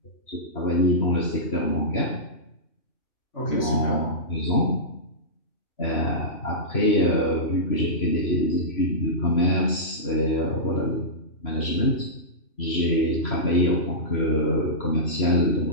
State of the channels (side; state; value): right; late; 3.0 ms